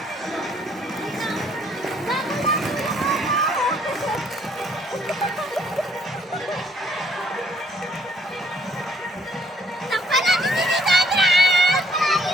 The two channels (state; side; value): normal; both; correlation 0.64